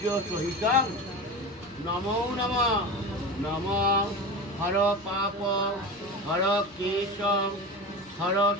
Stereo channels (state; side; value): normal; both; correlation 0.27